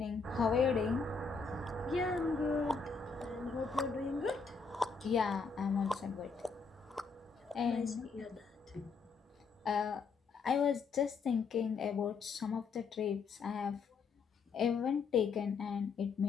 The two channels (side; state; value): right; quieter; 5.0 dB